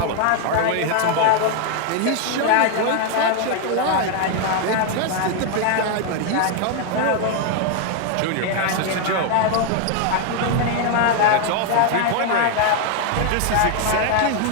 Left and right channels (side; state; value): both; different; correlation 0.00